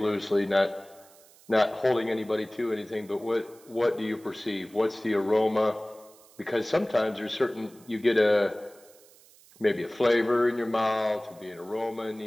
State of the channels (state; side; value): noise; right; hiss, 26 dB below the sound